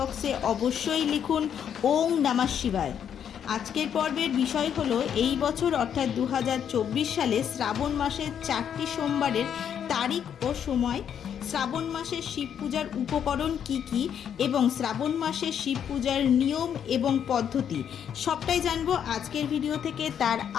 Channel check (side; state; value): right; quieter; 8.6 dB